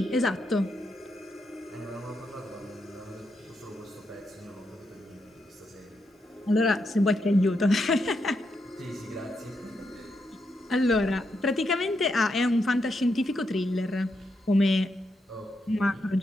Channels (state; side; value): normal; both; correlation 0.82